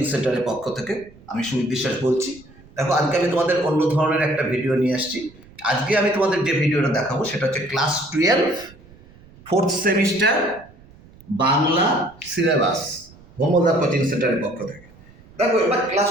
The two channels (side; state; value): right; noise; rumble, 24 dB below the sound